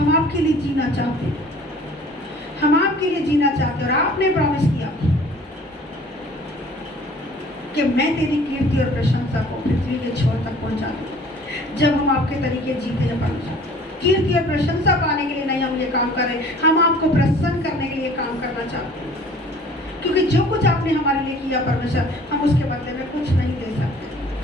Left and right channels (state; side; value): normal; both; correlation 0.50